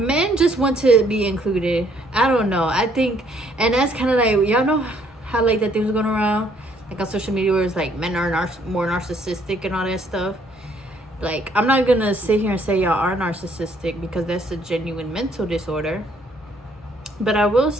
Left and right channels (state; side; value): normal; both; correlation 0.66